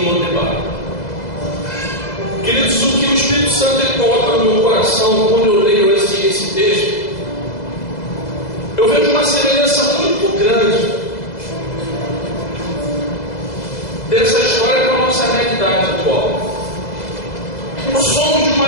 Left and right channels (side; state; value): right; late; 2.0 ms